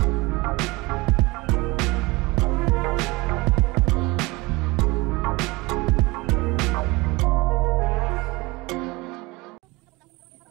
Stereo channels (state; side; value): quieter; left; 23.5 dB